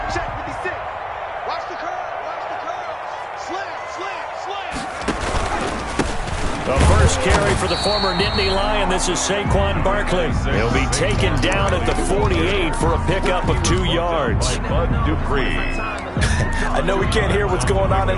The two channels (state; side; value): identical; both; correlation 1.00